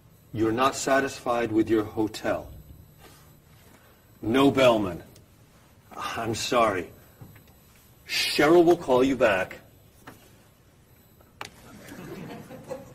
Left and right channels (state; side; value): identical; both; correlation 1.00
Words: You're not satisfied with your hotel? No bellman. I'm sorry. Cheryl will call you back.